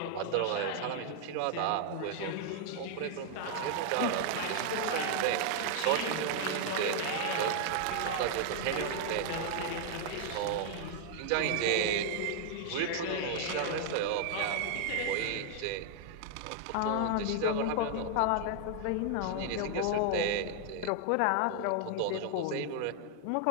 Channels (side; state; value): both; different; correlation 0.00